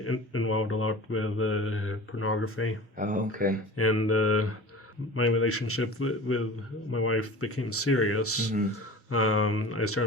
involved a lot with pornography. Oh, okay. And my relationship with my wife became serious. I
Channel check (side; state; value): both; normal; correlation 0.38